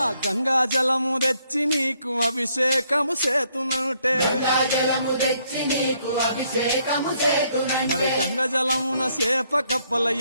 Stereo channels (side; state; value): both; inverted; correlation -0.70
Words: గంగా జలము తెచ్చి నీకు అభిషేకము చేతునంటే గంగాజలము తెచ్చి నీకు అభిషేకము మరి చేతునంటే గంగ జలమున చేప కప్పల